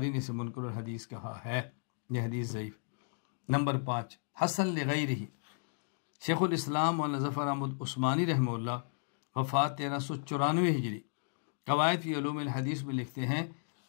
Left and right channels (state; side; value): silent; right; digital silence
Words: نے اسے منکر الحدیث کہا ہے، یہ حدیث ضعیف۔ نمبر 5 حسن لغیرہ، شیخ الاسلام مولانا ظفر احمد عثمانی رحمہ اللہ وفات 1394 ہجری، قواعد فی علوم الحدیث میں لکھتے ہیں